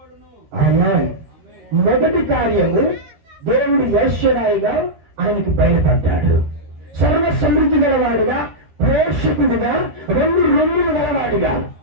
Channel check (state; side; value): late; left; 13 ms